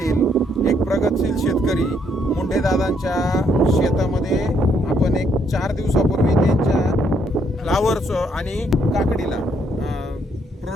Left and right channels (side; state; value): both; normal; correlation 0.71